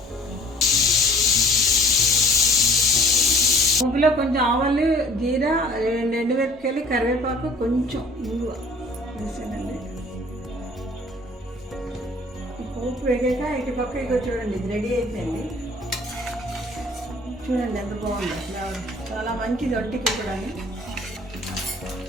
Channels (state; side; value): normal; both; correlation 0.52